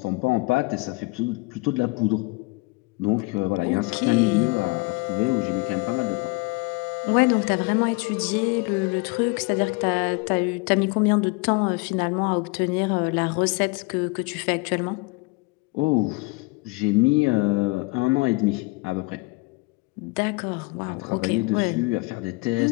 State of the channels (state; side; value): quieter; right; 26.4 dB